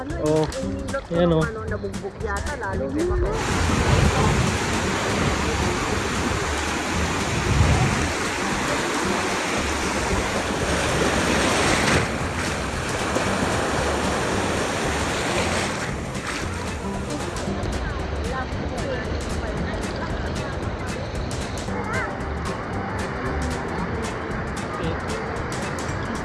Oh, yan o. Nabugbog yata, lalo di ba?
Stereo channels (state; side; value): identical; both; correlation 1.00